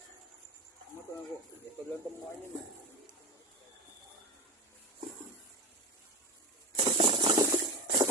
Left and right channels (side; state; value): both; normal; correlation 0.23